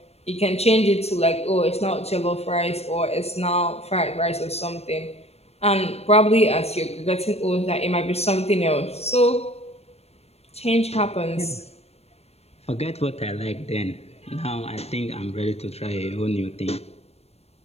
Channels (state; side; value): late; right; 0.30 ms